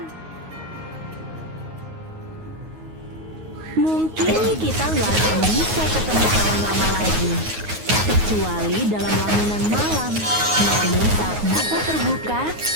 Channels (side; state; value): left; late; 9.4 ms